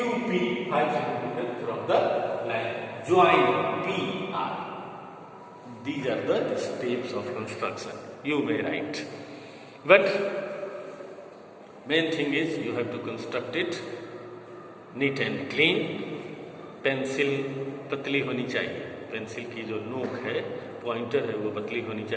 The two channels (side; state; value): both; identical; correlation 1.00